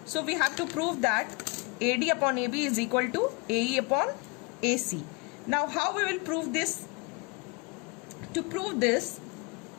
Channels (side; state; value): right; quieter; 29.2 dB